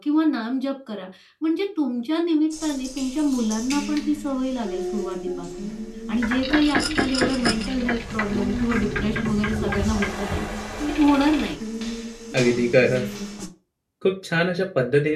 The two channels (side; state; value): both; identical; correlation 1.00